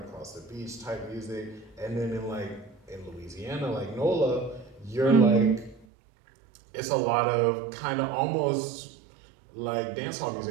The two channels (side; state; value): left; drops out; at 5.9 s